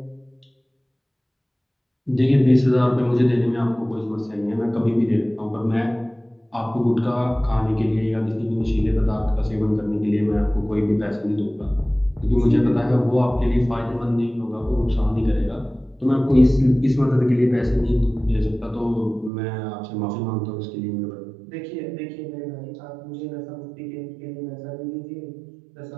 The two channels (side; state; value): left; drops out; at 19.3 s